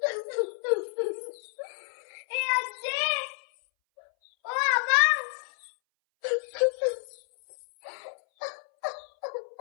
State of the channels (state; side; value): silent; right; 58 dB below the other